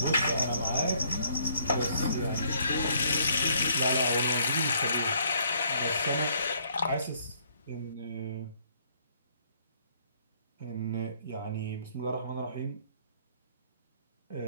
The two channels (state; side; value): inverted; both; correlation -0.65